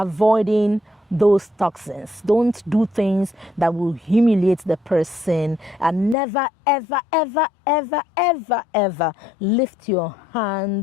those toxins. Don't do things that will humiliate the person, and never, ever, ever, ever, ever, ever lift your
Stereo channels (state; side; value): drops out; right; at 6.2 s